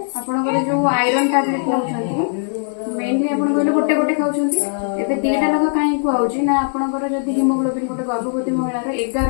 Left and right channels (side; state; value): right; silent; digital silence